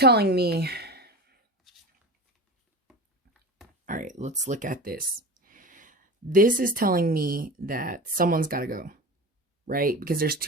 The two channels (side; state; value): both; normal; correlation 0.30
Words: me... All right, let's look at this. This is telling me that someone's got to go, right? Because there's